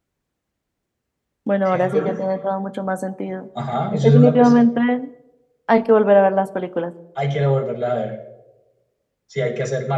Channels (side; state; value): both; identical; correlation 1.00